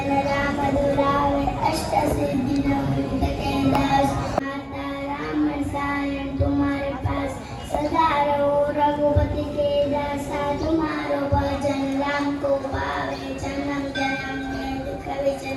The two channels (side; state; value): both; identical; correlation 1.00